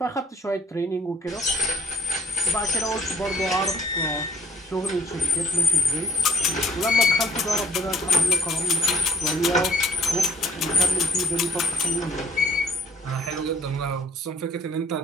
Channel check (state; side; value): normal; both; correlation 0.60